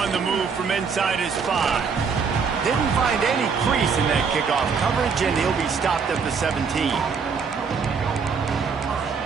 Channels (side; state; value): left; quieter; 5.7 dB